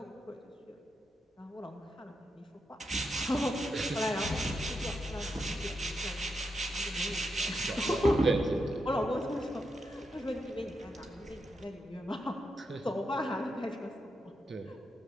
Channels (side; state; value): both; normal; correlation 0.84